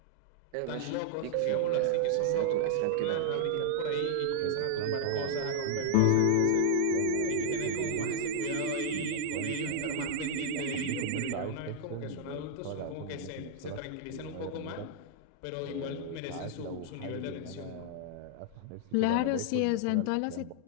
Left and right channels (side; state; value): both; different; correlation -0.01